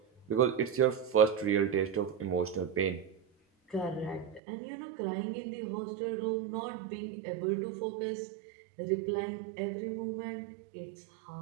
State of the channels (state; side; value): drops out; left; at 4.4 s